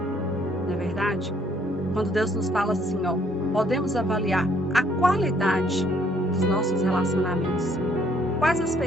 Não é verdade? Quando Deus nos fala assim, podemos avaliar a qualidade dos nossos relacionamentos. Quais as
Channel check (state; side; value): normal; both; correlation 0.65